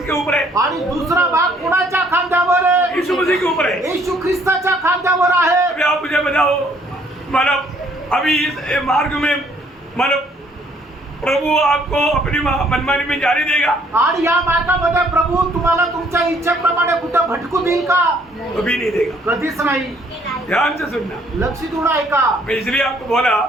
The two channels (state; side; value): normal; both; correlation 0.63